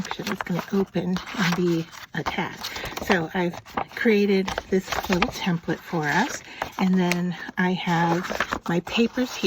It's going to open and be a tag. So I've created this little template for us, and then I have my papers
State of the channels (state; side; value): identical; both; correlation 1.00